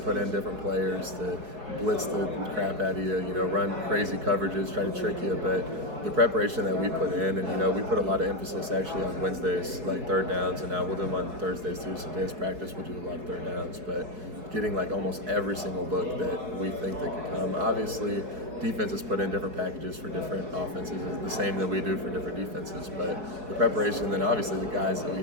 in different players to blitz the crap out of you, run crazy coverages, try to trick you. But the preparation that we put in, and we put a lot of emphasis actually on Wednesdays, like third downs, and now we'll do them on Thursdays too. So today's practice, we'll do a lot of third downs, but getting like almost every single look that we think that could come. Obviously, defenses put in different packages for different offenses, is the same that we do for different defenses. But the preparation, then obviously the guys that we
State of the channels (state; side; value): late; left; 4.7 ms